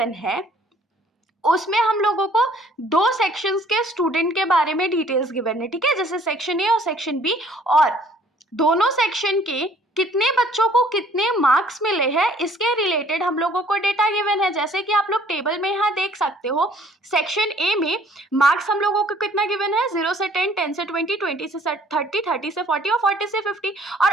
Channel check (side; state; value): both; normal; correlation 0.58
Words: है उसमें हम लोगों को दो सेक्शंस के स्टूडेंट के बारे में डिटेल्स गिवन है, ठीक है, जैसे सेक्शन ए और सेक्शन बी, और दोनों सेक्शन के कितने बच्चों को कितने मार्क्स मिले हैं इसके रिलेटेड हम लोगों को डेटा गिवन है। जैसे कि आप लोग टेबल में यहाँ देख सकते हो, सेक्शन ए में मार्क्स हम लोगों को कितना गिवन है, 0 से 10, 10 से 20, 20 से 30, 30 से 40 और 40 से 50।